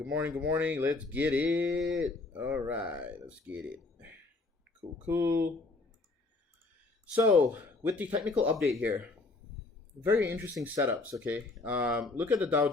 morning, good morning. Let's get it. All right, let's get it. Cool, cool. So with the technical update here, very interesting setups. Okay, look at the Dow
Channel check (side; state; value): right; quieter; 3.4 dB